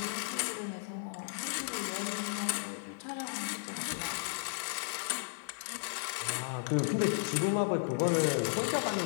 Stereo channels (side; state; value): right; silent; 55 dB below the other